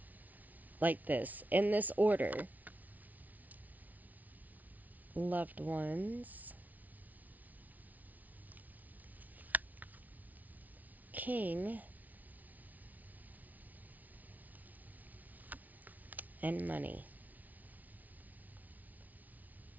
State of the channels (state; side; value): late; left; 0.076 ms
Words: like this, in this order. Loved ones, king, and money.